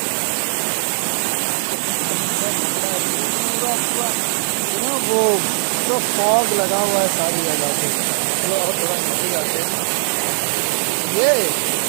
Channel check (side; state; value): left; silent; 66 dB below the other